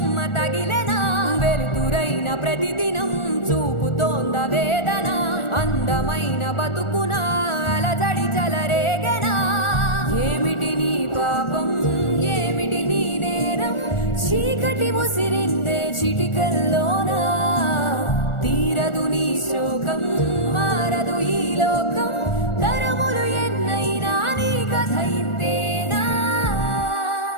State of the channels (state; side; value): late; right; 1.4 ms